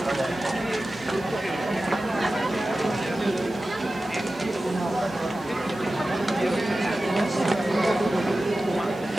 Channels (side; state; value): right; noise; hiss, 25 dB below the sound